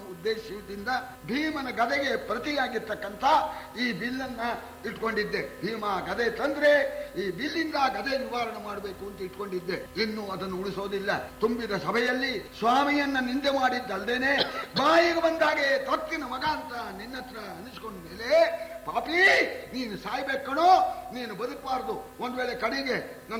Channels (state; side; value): identical; both; correlation 1.00